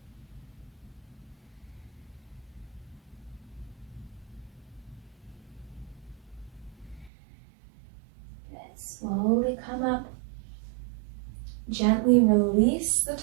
Good. Slowly come up. Gently release the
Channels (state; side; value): drops out; left; at 7.1 s